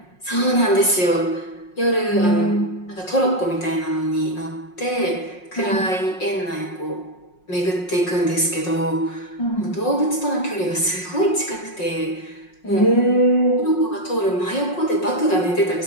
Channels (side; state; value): right; late; 5.5 ms